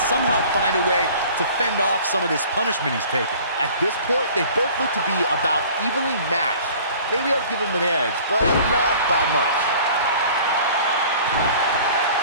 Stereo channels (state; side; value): inverted; both; correlation -0.48